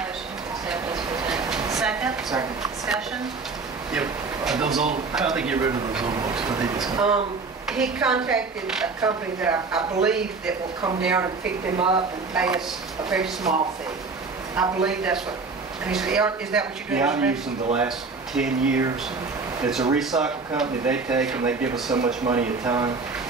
motion to accept as presented. Second? Second. Discussion? Yep. Those old, how do they get rid of those old books? What they just, He contacted a company that I believe that will come down and pick them up and pay us a very small fee. I believe that's what, is that what you're doing? Yeah, I've used them the last 10 years. It's a recycle company. They take them, they give us so much money a ton,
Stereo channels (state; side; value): quieter; left; 4.3 dB